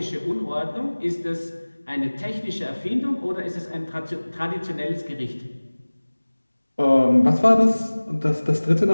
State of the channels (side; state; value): both; inverted; correlation -1.00